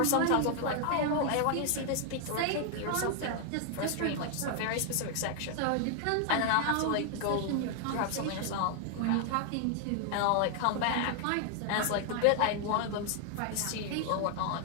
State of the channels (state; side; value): different; both; correlation 0.00